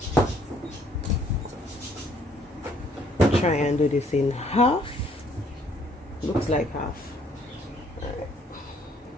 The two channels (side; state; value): both; normal; correlation 0.64